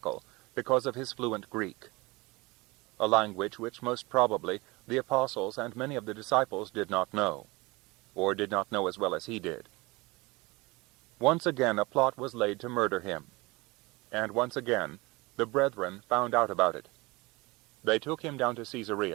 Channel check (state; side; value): quieter; left; 23.6 dB